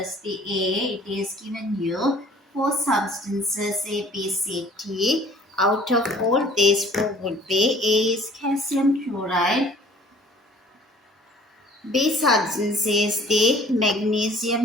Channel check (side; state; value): both; normal; correlation 0.53